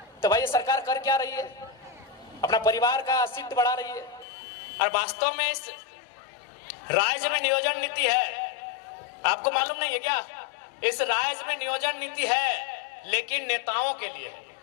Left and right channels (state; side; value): drops out; right; at 4.2 s